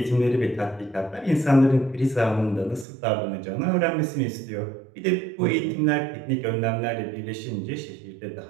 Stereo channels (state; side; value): drops out; left; at 2.9 s